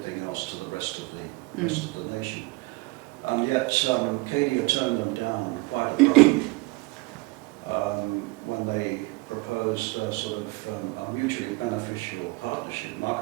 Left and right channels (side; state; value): left; quieter; 24.5 dB